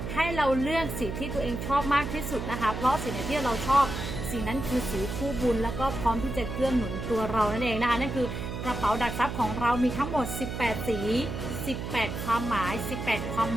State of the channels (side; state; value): right; noise; hum, 5 dB below the sound